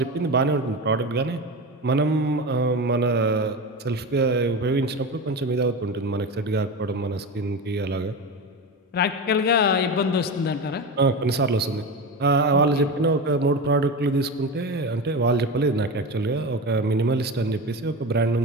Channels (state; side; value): normal; both; correlation 0.23